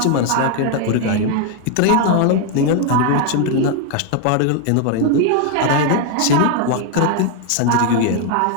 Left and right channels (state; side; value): different; both; correlation 0.01